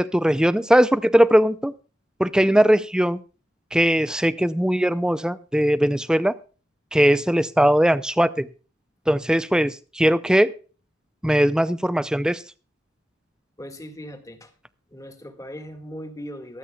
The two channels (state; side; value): normal; both; correlation 0.96